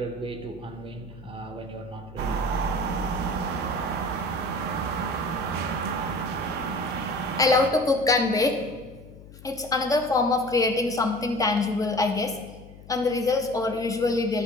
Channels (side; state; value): left; noise; hum, 19 dB below the sound